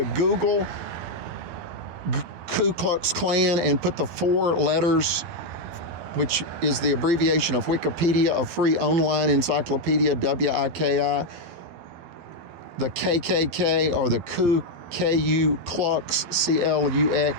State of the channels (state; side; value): late; left; 12 ms